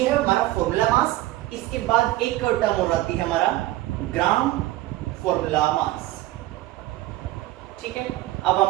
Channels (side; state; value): left; quieter; 16.5 dB